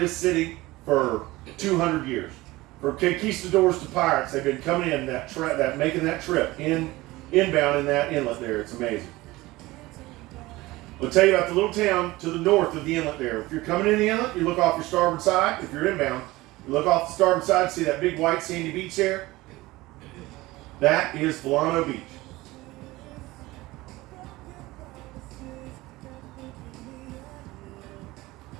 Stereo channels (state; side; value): quieter; left; 19.5 dB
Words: city for 200 years. From conquistadors to pirates, they've been coming in making that trip inbound in that inlet there. It's amazing. I'll tell you about the little town to the north of the inlet there. If you're coming in the inlet, you look off your starboard side. If you're inbound, you look off the starboard side, see that big white sandy beach there? That is Volano Beach.